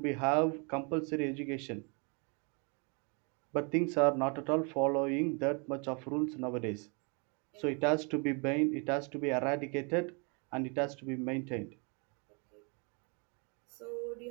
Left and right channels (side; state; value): left; quieter; 34.5 dB